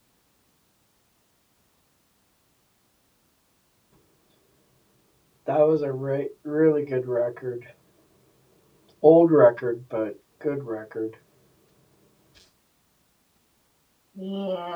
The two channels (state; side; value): identical; both; correlation 1.00